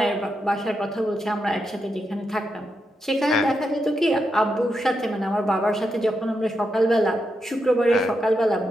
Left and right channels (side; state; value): both; normal; correlation 0.84